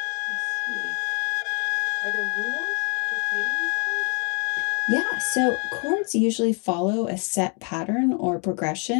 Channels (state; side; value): quieter; right; 37.0 dB